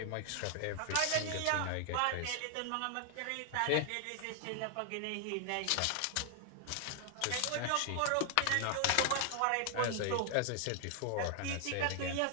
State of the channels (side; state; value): both; different; correlation 0.00